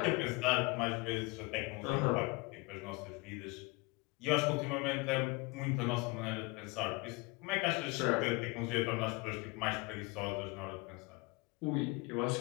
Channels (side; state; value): right; quieter; 26.1 dB